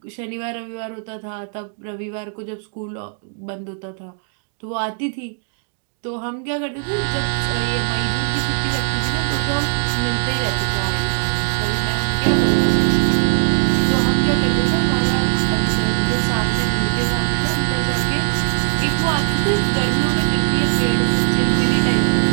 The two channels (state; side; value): silent; left; 66 dB below the other